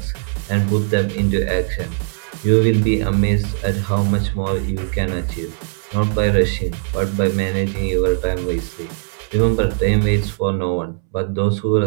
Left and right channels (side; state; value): left; silent; 65 dB below the other